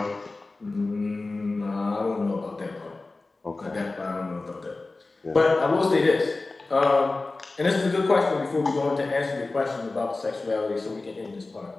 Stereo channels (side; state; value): right; quieter; 3.4 dB